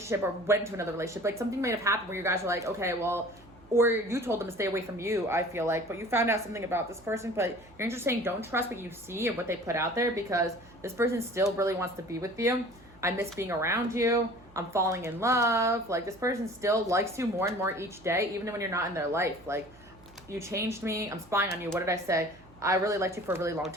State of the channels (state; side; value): noise; right; hum, 25 dB below the sound